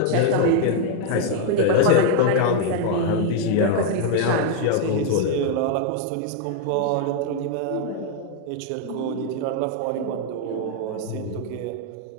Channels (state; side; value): different; both; correlation 0.00